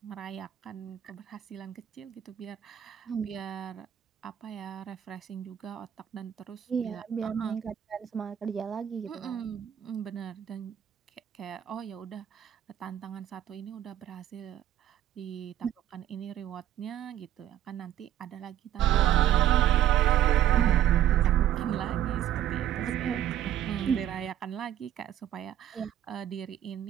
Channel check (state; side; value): quieter; left; 11.4 dB